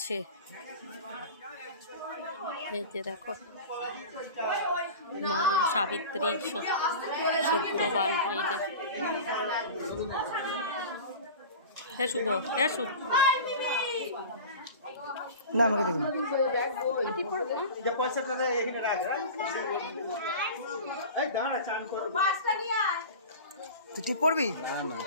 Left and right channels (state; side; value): inverted; both; correlation -0.34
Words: এই যে দেখো মা সাবিত্রী সত্যবান, এই যে হ্যাঁ শুভ, হ্যাঁ শুভ না আমাকে দেখুন তুই পড়বি,